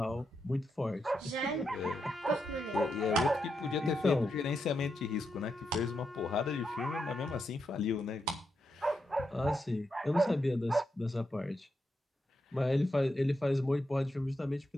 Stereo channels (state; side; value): normal; both; correlation 0.84